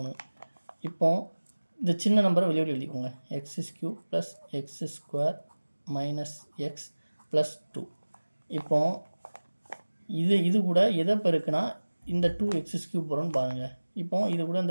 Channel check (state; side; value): inverted; both; correlation -1.00